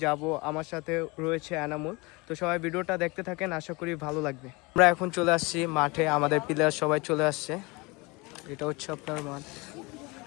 যাব, আমার সাথে রয়েছে এনামুল। তো সবাই ভিডিওটা দেখতে থাকেন, আশা করি ভালো লাগবে। আমরা এখন চলে আসছি মাঠে, আমাদের প্লেয়ার সবাই চলে আসছে। এটা হচ্ছে আপনার মাঠ।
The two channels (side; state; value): right; quieter; 25.8 dB